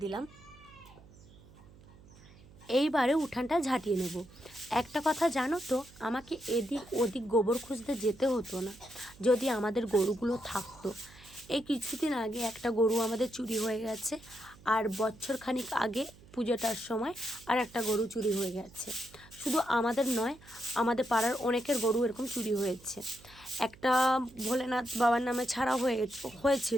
দিলাম। এইবারে উঠানটা ঝাঁটিয়ে নেব। একটা কথা জানো তো, আমাকে এদিক ওদিক গোবর খুঁজতে যেতে হতো না যদি আমাদের গরুগুলো থাকতো। এই কিছুদিন আগে একটা গরু আমাদের চুরি হয়ে গেছে, আর বছরখানিক আগে পুজোটার সময় আর একটা গরু চুরি হয়ে গেছে। শুধু আমাদের নয়, আমাদের পাড়ার অনেকের গরু এরকম চুরি হয়েছে। একটা ভোলেনাথ বাবার নামে ছাড়া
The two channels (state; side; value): noise; right; hum, 23 dB below the sound